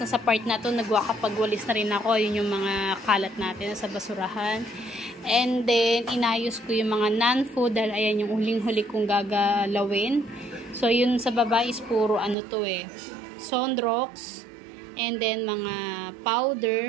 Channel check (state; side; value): drops out; left; at 12.4 s